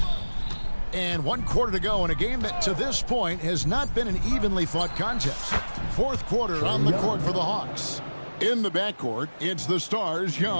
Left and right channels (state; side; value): inverted; both; correlation -1.00